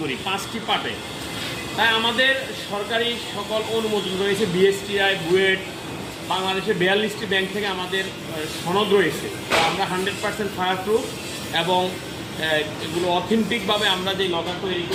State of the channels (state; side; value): identical; both; correlation 1.00